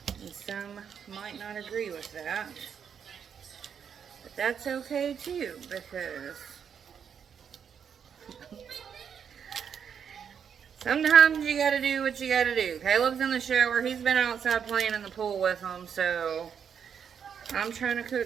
And some might not agree with that. But that's okay too, because sometimes you gotta do what you gotta do. Caleb's in the shower. He's been outside playing in the pool with them, so I'm trying to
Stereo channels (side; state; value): left; quieter; 7.6 dB